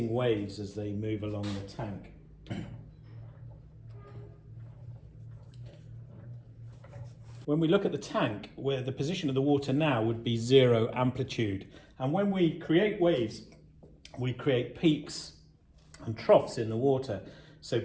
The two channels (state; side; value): identical; both; correlation 1.00